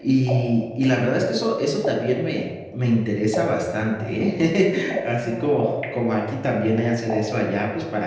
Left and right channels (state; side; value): identical; both; correlation 1.00